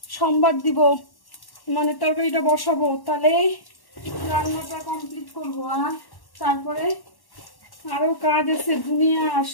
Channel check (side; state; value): right; late; 1.1 ms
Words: সোমবার দিব, মানে তরকারিটা বসাবো, তাহলে রান্নাটা কমপ্লিট করবো। আর তারপরে আরো কাজ আছে দুনিয়া,